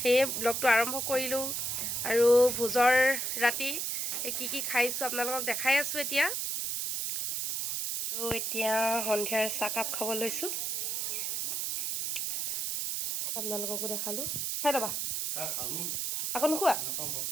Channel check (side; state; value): right; noise; hiss, 1 dB below the sound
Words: ব্লগটো আৰম্ভ কৰিলোঁ আৰু ভোজৰ ৰাতি কি খাইছোঁ আপোনালোকক দেখাই আছোঁ এতিয়া। আৰু এতিয়া সন্ধিয়াৰ চাহকাপ খাব লৈছোঁ, আপোনালোককো দেখালোঁ। খাই ল'বা, আকৌ নোখোৱা?